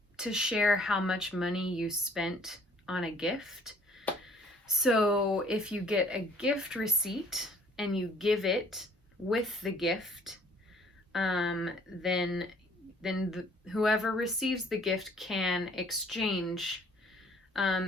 share how much money you spent on a gift. So if you get a gift receipt and you give it with the gift, then whoever receives the gift can exchange,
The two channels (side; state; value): both; normal; correlation 0.58